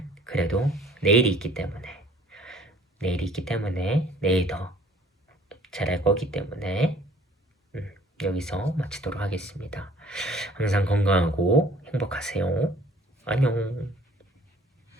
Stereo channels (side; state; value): both; normal; correlation 0.55